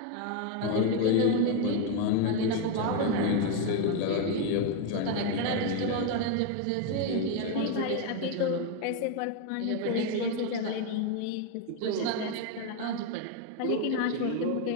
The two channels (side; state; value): both; different; correlation 0.01